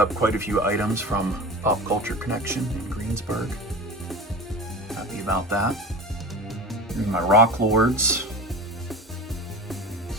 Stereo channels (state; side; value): normal; both; correlation 0.33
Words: quite a few items from Pop Culture Connection in Greensburg. Happy about that. Here's my Rock Lords.